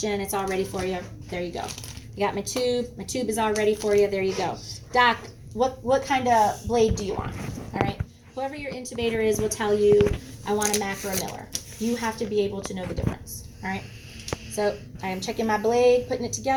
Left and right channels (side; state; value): both; identical; correlation 1.00